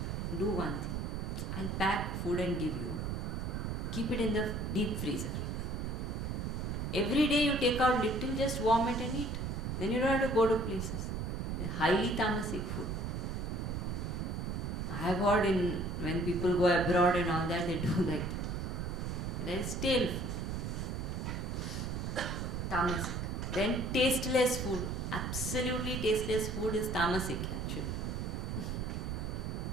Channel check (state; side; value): noise; right; rumble, 2 dB below the sound